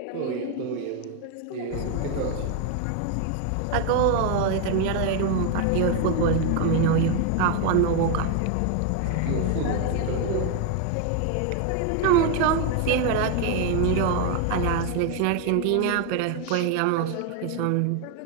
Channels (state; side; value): different; both; correlation 0.01